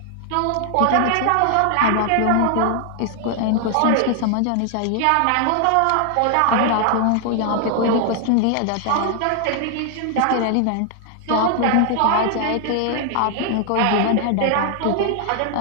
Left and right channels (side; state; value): both; different; correlation 0.00